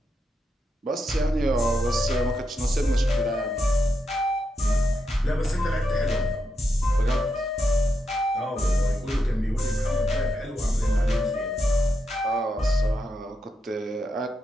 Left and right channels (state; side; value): normal; both; correlation 0.84